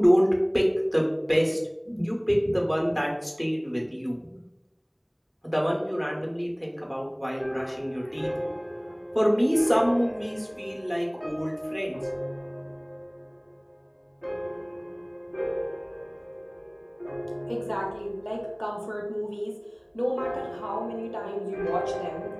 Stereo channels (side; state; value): both; identical; correlation 1.00